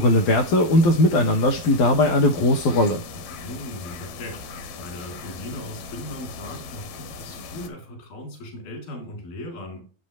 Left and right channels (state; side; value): late; right; 12 ms